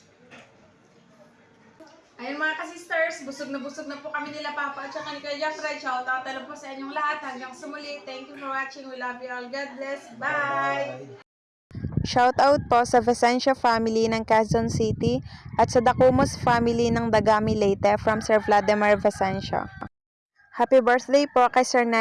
Ayun mga ka-sisters, busog na po kami nila Papa at saka ni Kuya Jeffrey. Shoutout na po sa inyong lahat. Hanggang sa muli. Thank you for watching. We love you all. God bless. Bye! Shoutout po sa Vicencio family ng Quezon City at sa Dacumos family ng Dagami Leyte from Sir Vladimir Vicencio. Happy birthday po kay Sir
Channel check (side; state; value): both; identical; correlation 1.00